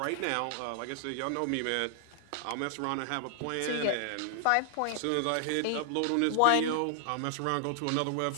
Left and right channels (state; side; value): different; both; correlation 0.00